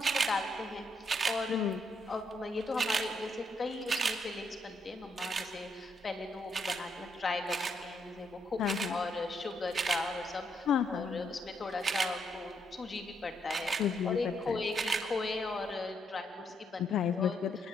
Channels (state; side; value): normal; both; correlation 0.76